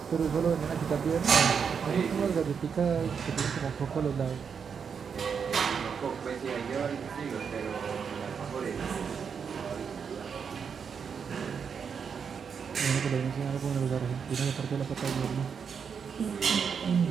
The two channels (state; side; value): quieter; left; 6.5 dB